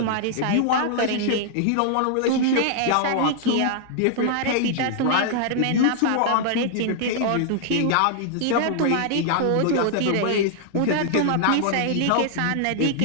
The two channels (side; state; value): both; different; correlation -0.01